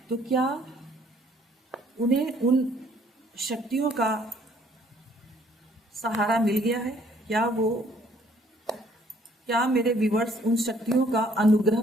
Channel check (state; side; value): normal; both; correlation 0.62